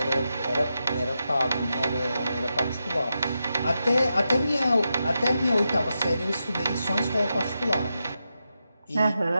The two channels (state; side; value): inverted; both; correlation -0.88